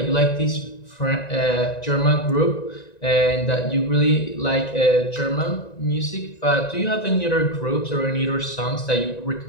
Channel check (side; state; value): right; late; 1.9 ms